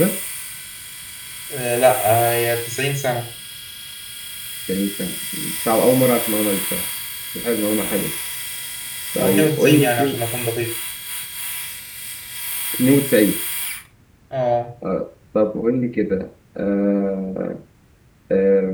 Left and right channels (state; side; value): identical; both; correlation 1.00